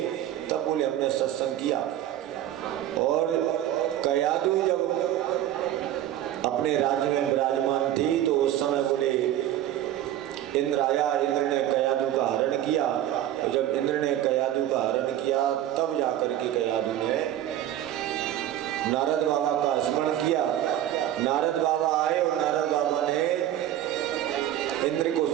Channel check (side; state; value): left; quieter; 12.4 dB